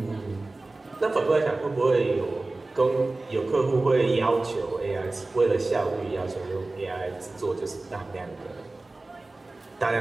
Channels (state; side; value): quieter; left; 3.1 dB